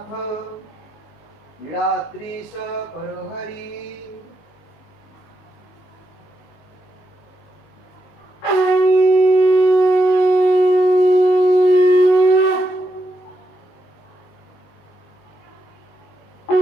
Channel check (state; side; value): late; right; 19 ms